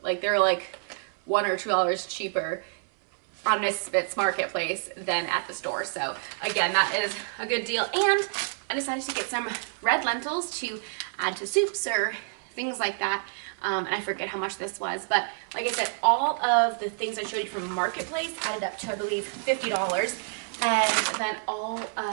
like they're like $1 or $2 cheaper on Misfits Marketplace than at the store. So again, that is a good deal. And I decided to get some red lentils to add to soups or things like that. And I forget how much this was, but like I said, all of the things I showed you from Marketplace added up to, I believe, $50. And then all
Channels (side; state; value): left; silent; 59 dB below the other